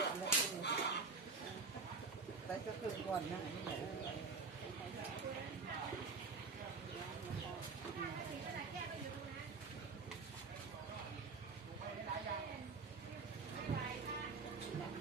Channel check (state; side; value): quieter; left; 4.5 dB